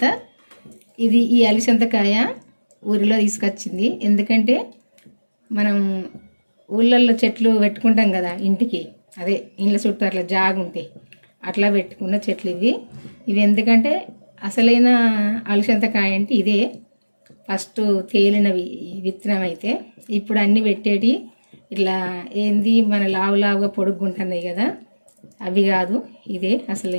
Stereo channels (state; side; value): inverted; both; correlation -1.00